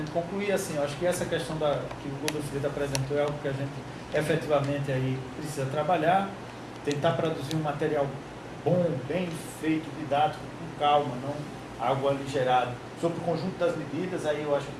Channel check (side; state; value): both; identical; correlation 1.00